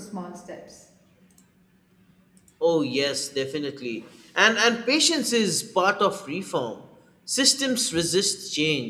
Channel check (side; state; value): both; identical; correlation 1.00